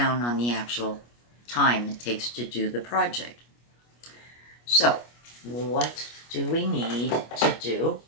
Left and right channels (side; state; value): right; late; 25 ms